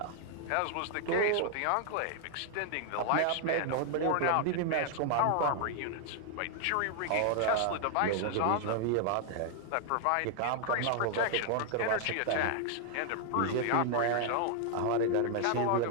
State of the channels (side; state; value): both; different; correlation 0.00